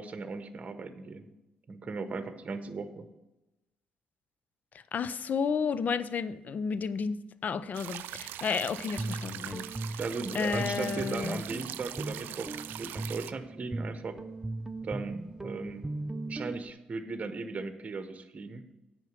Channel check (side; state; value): both; normal; correlation 0.71